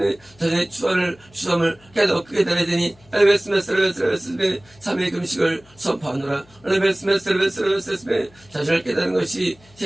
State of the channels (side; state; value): left; noise; hum, 28 dB below the sound